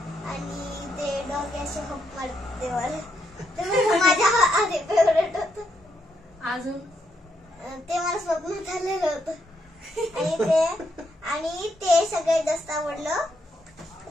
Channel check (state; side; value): normal; both; correlation 0.78